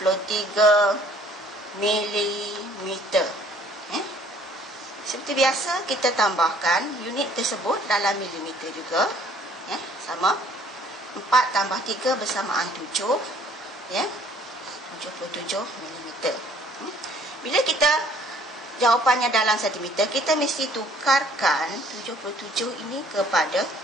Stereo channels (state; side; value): normal; both; correlation 0.59